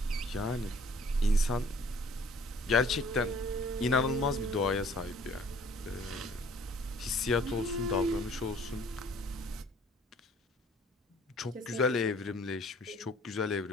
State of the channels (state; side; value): normal; both; correlation 0.55